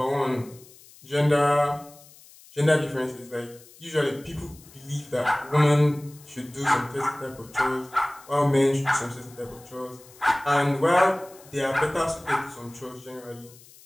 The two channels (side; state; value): left; noise; hiss, 23 dB below the sound